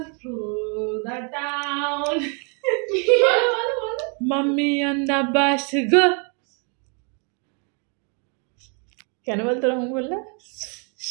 through the town. Mummy on the bus go. কেন বলতো রকম বললে?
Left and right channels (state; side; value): quieter; left; 38.1 dB